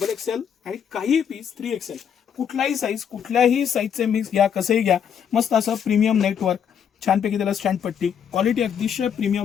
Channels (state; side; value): quieter; right; 8.0 dB